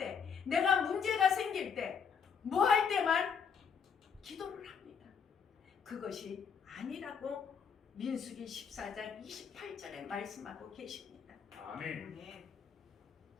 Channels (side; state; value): right; quieter; 6.5 dB